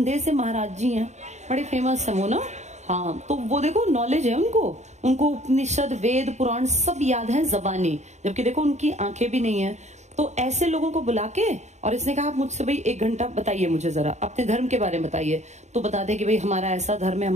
से महाराज जी हैं, बड़े फेमस है वो ना, हाँ, तो वो देखो नॉलेज है उनको उपनिषद वेद पुराण सब याद है जबानी, जबकि देखो उनकी आंखें भी नहीं है। तो ऐसे लोगों को बुला के, और इसने कहा आप मुझसे भाई 1 घंटा बताइए, मुझे जरा अपने धर्म के बारे में बताइए। तो बता दे कि भाई हमारा ऐसा धर्म है,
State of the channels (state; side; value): late; left; 0.33 ms